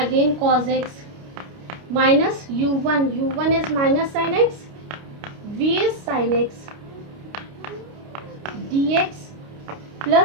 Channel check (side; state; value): left; late; 29 ms